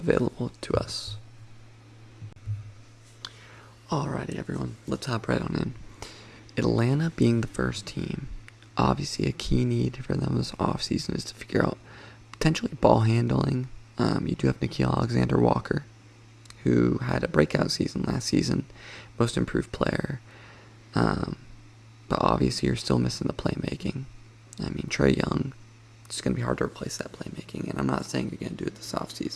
to us. Alrighty, everyone, let's hop right on in. Atlanta being the first team, obviously a key need for them this offseason is to figure out potentially ball handling. You do have Nickeil Alexander-Walker, who had a breakout season last season, most improved player. But obviously you're still missing the playmaking. I mean, Trey Young, it's going to be hard to replace that playmaking, and I'm not saying you're going to do it this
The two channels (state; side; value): identical; both; correlation 1.00